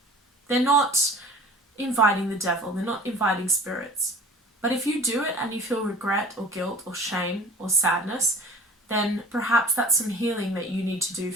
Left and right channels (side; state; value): both; normal; correlation 0.44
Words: They're not inviting the devil. They're not inviting spirits. But if you do it and you feel regret or guilt or shame or sadness, then perhaps that's some healing that you need to do